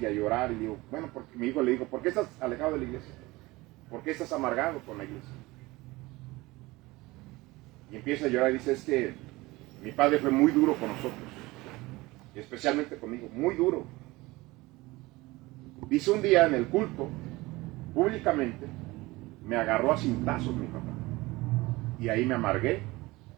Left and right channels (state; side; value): quieter; left; 21.1 dB